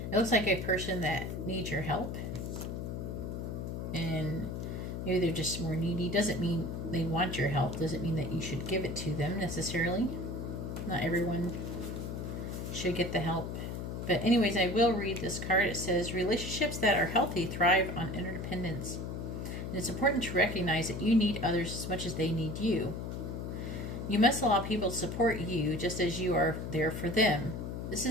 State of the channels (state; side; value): noise; left; hum, 5 dB below the sound